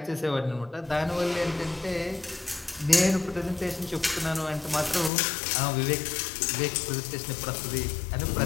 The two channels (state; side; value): drops out; right; at 5.1 s